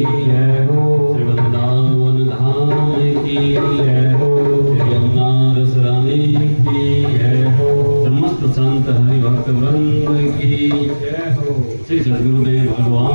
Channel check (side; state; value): both; inverted; correlation -1.00